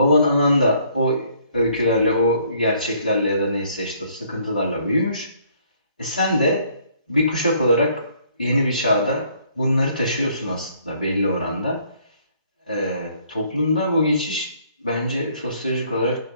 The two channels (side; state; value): both; inverted; correlation -0.63